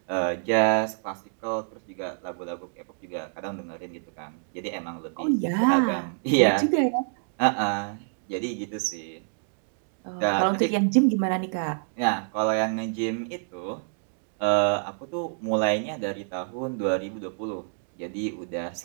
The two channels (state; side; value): silent; left; digital silence